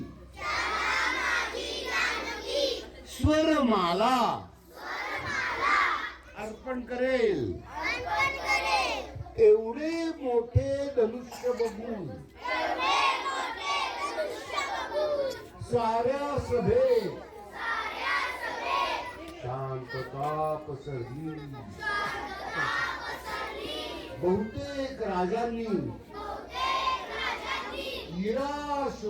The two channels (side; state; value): both; identical; correlation 1.00